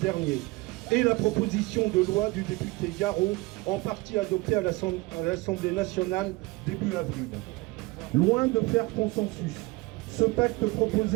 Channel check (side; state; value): left; quieter; 22.9 dB